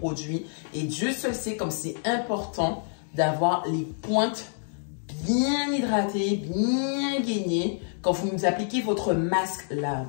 et Dieu seul sait comme c'est important d'avoir les pointes bien hydratées, bien gainées. Quand vous appliquez votre masque là,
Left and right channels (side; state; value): right; silent; 60 dB below the other